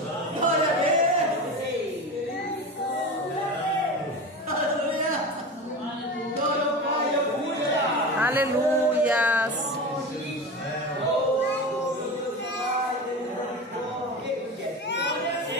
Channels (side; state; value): both; normal; correlation 0.27